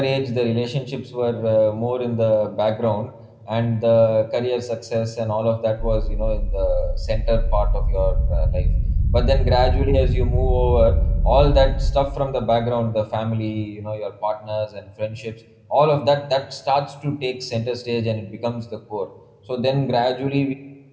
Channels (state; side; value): identical; both; correlation 1.00